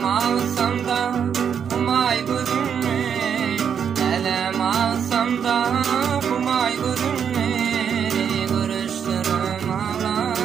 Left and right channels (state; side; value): quieter; left; 7.7 dB